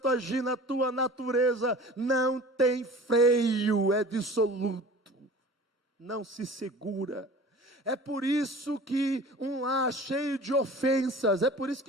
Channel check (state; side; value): normal; both; correlation 0.42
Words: agir na tua natureza, não tem freio, é dissoluto, não se segura. É por isso que um lar cheio de ofensas, é por isso